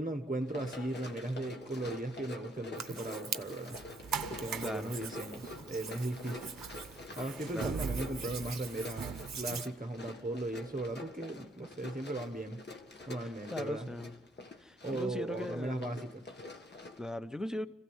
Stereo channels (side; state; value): both; normal; correlation 0.69